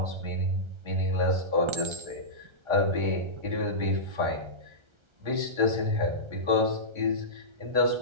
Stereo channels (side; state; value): left; late; 1.3 ms